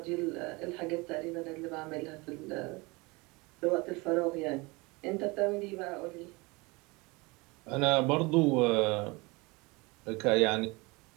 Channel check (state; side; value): quieter; left; 25.3 dB